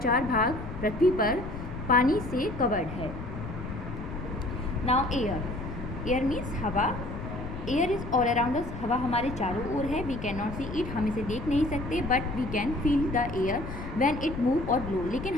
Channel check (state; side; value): noise; left; rumble, 9 dB below the sound